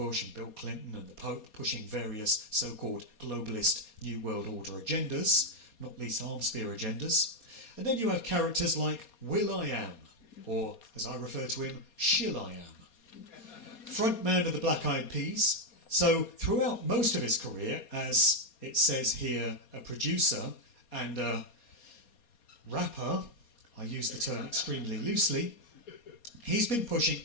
and Bill Clinton and the Pope, pushing various so-called globalist New World Order agendas, not least arms spear agendas. And then you have characters like Will.i.am, or as I refer to him, Shill.i.am, frontman of the Black Eyed Peas. So throughout most of his career, as it says here, a producer and a rapper, I use the term extremely loosely, he's been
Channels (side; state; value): right; late; 4.2 ms